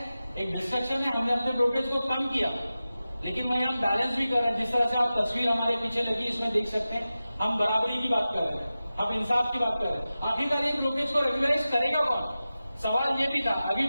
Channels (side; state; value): both; inverted; correlation -0.94